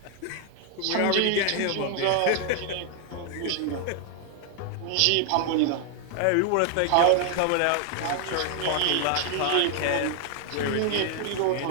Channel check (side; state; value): both; different; correlation 0.00